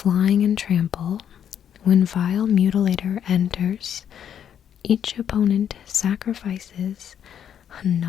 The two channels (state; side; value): quieter; right; 9.1 dB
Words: and trample. When Vile Mutilator enters, each opponent sacrifices a